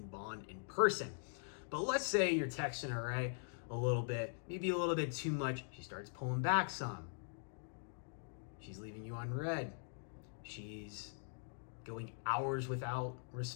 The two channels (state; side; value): silent; right; digital silence